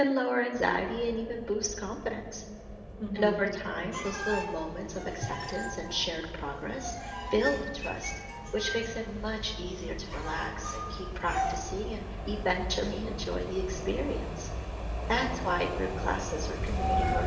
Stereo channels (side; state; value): both; identical; correlation 1.00